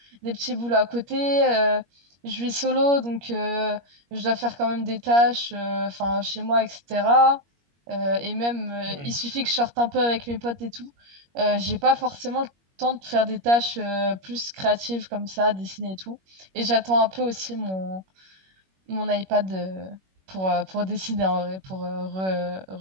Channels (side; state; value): left; late; 21 ms